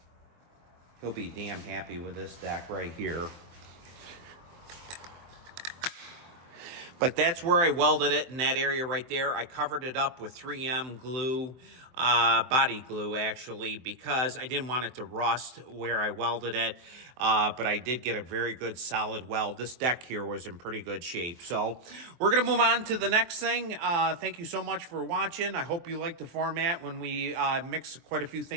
He'll be damn happy with this deck right here. But that's where I welded it, in that area right there. I covered it up with 3M glue. body glue, actually, because I didn't want it to rust where I welded it. But I did get a very good solid weld. This deck here was in pretty good shape. So we're going to move on to the next thing. Thank you so much for watching. I hope you like the format when we mix quite a few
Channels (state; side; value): late; left; 23 ms